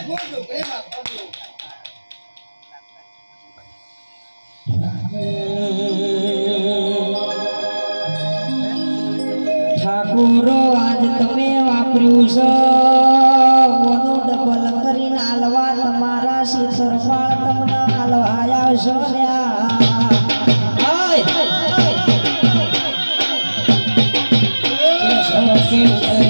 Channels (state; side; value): inverted; both; correlation -1.00